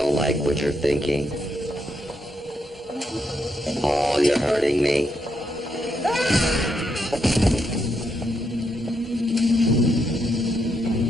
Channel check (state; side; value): normal; both; correlation 0.80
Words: like what you're thinking. Paul, you're hurting me.